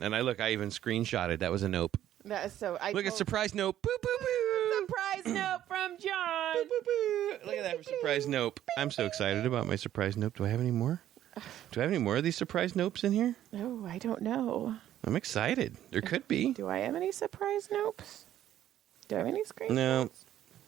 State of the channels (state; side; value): quieter; left; 12.0 dB